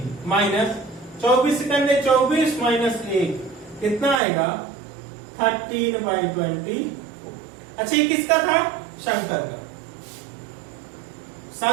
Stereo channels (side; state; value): left; drops out; at 4.2 s